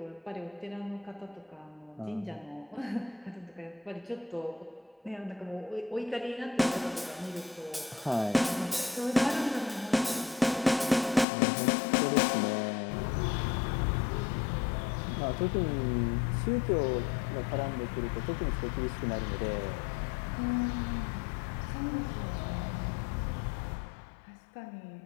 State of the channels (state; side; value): drops out; right; at 11.2 s